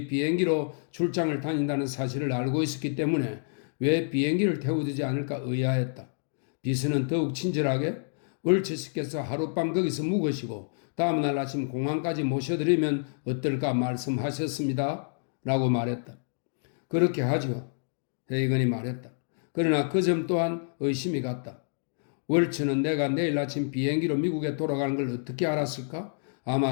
비행기로 출장을 다닌다는 사실을 알고 있었기 때문에 왜 비행기를 태워주지 않을까 의아했다. 비서는 더욱 친절하게 월츠 씨께서 하룻밤 거기서 묵으시고 다음날 아침 공항까지 모셔드리면 어떨까 말씀하셨습니다. 라고 말했다. 그렇게 하죠. 헤이건이 말했다. 그러나 그 점 또한 의심이 갔다. 월츠는 내가 내일 아침 비행기로 미국에 돌아가는 걸 어떻게 알았을까?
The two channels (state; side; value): silent; right; digital silence